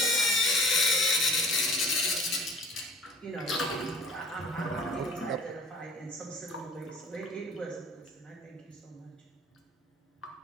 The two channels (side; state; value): both; normal; correlation 0.47